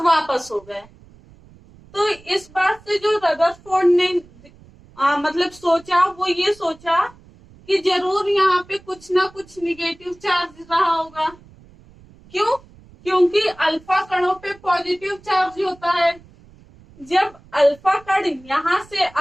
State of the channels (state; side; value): noise; right; rumble, 25 dB below the sound